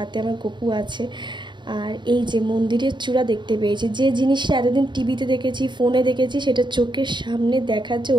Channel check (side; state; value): left; late; 0.22 ms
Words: আমার গপু আছে। আর এই যে মন্দিরের চূড়া দেখতে পেয়েছি, যে জিনিসটা এতদিন টিভিতে দেখেছি, ফোনে দেখেছি, সেটা চোখের সামনে দেখার যে